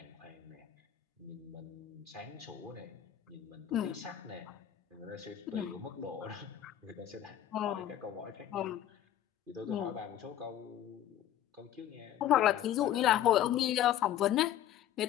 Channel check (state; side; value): quieter; right; 11.5 dB